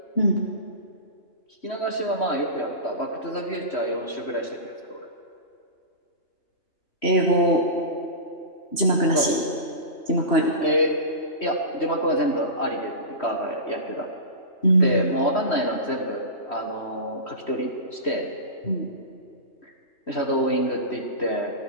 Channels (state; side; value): late; right; 3.1 ms